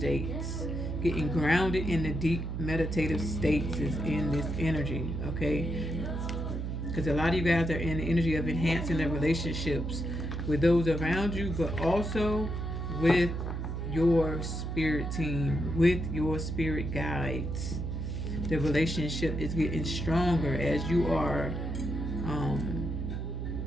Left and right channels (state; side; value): noise; right; hum, 3 dB below the sound